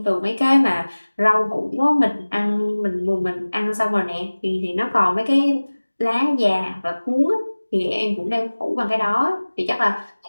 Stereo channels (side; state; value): both; inverted; correlation -1.00